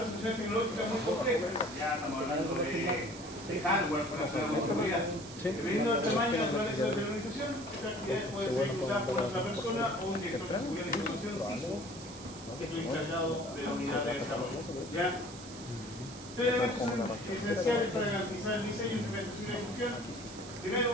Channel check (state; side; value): noise; right; hiss, 15 dB below the sound